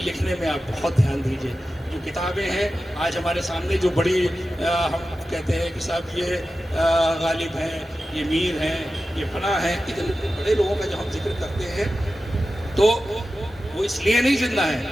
लिखने में आप बहुत ध्यान दीजिए। जो किताबें हैं आज हमारे सामने जो बड़ी हम कहते हैं कि साहब ये गालिब हैं, ये मीर हैं, ये फना हैं, इतने बड़े लोगों का जब हम जिक्र करते हैं तो वो इसलिए नहीं जिंदा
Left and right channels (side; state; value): both; normal; correlation 0.93